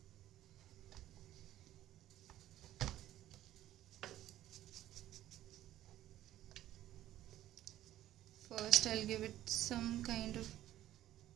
First I'll give it some kind of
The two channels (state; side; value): quieter; left; 13.5 dB